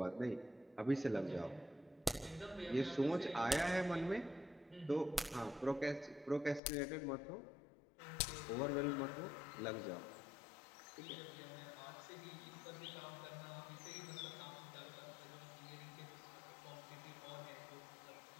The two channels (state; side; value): drops out; right; at 6.6 s